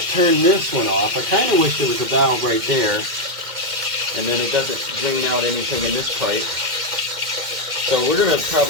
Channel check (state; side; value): late; left; 2.1 ms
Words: turn this one off. I kind of wish there was a valve right there. And then it doesn't drain out anything in this pipe. So we're going to